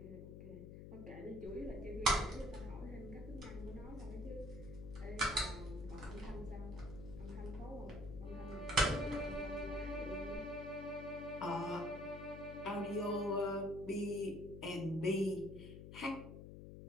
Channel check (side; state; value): left; noise; hum, 11 dB below the sound